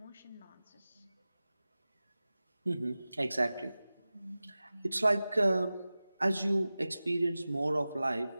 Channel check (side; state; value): both; inverted; correlation -0.97